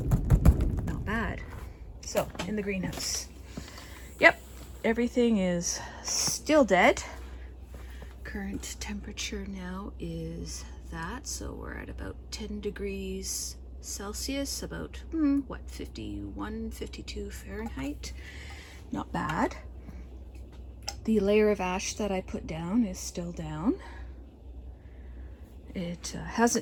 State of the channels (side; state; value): both; identical; correlation 1.00